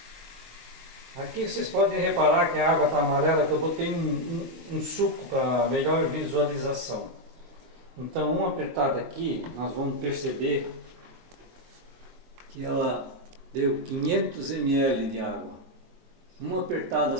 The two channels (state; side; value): late; left; 22 ms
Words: Aqui vocês podem reparar que a água está amarela, que eu botei um suco para melhor visualização. Então, uma apertada aqui, nós vamos perceber que ela deu 500 ml de água. Uma apertada